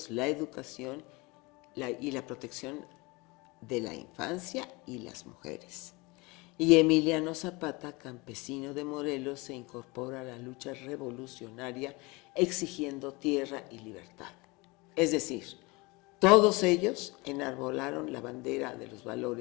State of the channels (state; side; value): quieter; right; 25.1 dB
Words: la educación y la protección de la infancia y las mujeres. Y Emiliano Zapata, campesino de Morelos, se incorpora a la lucha revolucionaria exigiendo tierra y libertad. Es decir, todos ellos enarbolaron la bandera de los